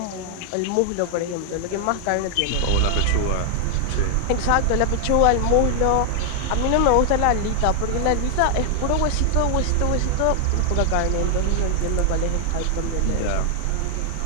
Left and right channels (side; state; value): both; different; correlation 0.00